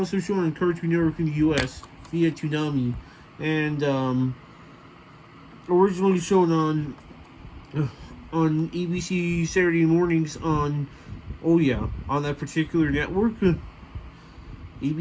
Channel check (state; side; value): identical; both; correlation 1.00